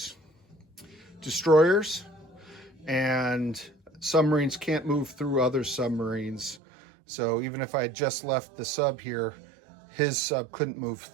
destroyers, and submarines can't move through other submarines. So even if I had just left the sub here, his sub couldn't move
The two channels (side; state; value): left; drops out; at 6.6 s